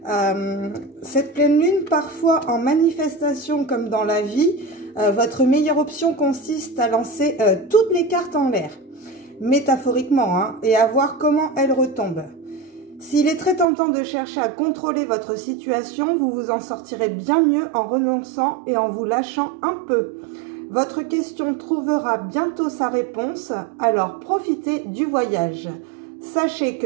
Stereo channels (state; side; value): drops out; left; at 13.7 s